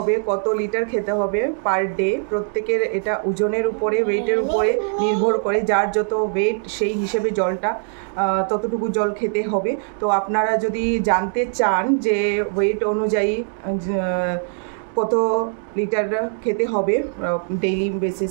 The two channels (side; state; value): left; silent; 65 dB below the other